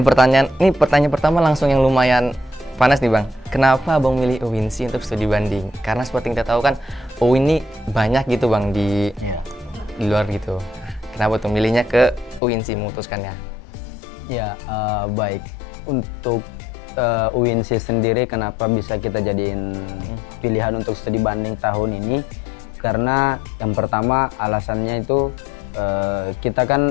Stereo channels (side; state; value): right; drops out; at 12.4 s